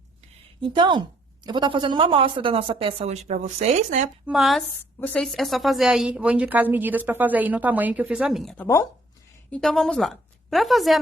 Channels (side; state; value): both; normal; correlation 0.65